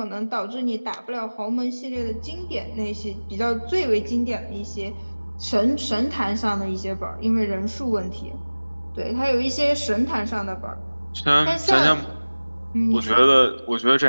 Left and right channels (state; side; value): inverted; both; correlation -1.00